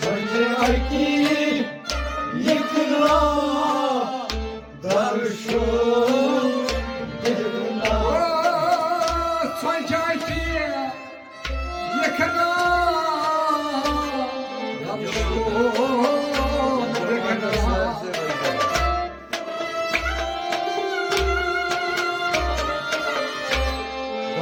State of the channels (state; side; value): identical; both; correlation 1.00